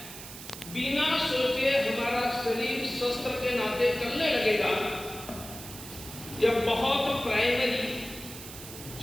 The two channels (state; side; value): noise; right; hiss, 13 dB below the sound